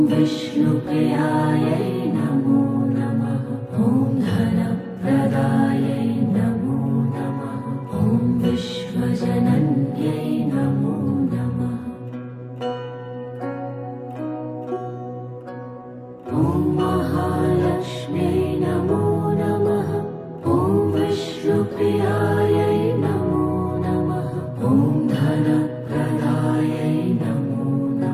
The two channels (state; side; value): identical; both; correlation 1.00